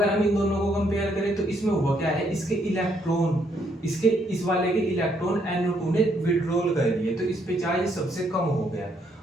हम इन दोनों को कंपेयर करें तो इसमें हुआ क्या है, इसके इलेक्ट्रॉन, इसके इस वाले के इलेक्ट्रॉन NO2 ने विड्रॉल कर लिए, तो इस पे चार्ज सबसे कम हो गया।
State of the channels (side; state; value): both; normal; correlation 0.72